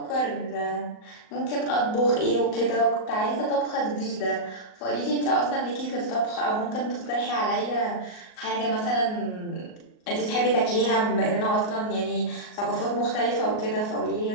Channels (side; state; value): right; late; 38 ms